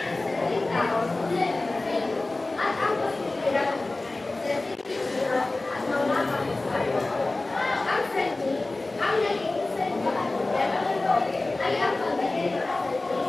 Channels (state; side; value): quieter; right; 3.0 dB